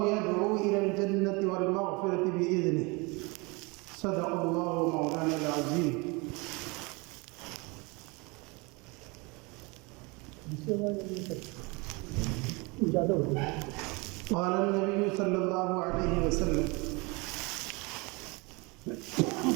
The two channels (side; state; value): left; quieter; 27.4 dB